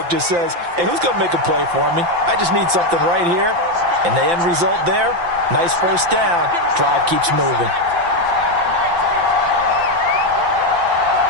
just says, hey, who's going to make a play for me? I just need something right here. And the end result there, nice first down. Drive keeps moving.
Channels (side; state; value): left; late; 5.8 ms